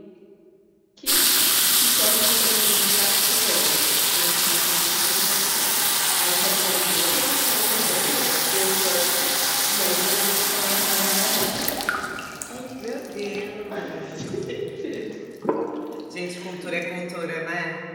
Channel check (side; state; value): both; identical; correlation 1.00